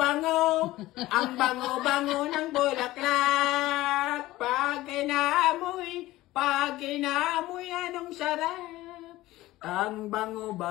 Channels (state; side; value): quieter; right; 17.2 dB